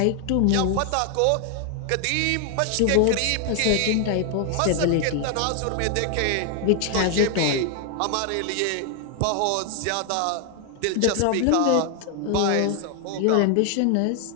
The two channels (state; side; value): different; both; correlation 0.00